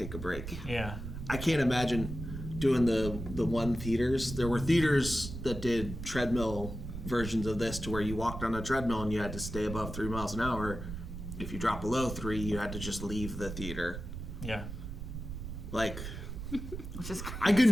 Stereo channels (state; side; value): noise; right; rumble, 8 dB below the sound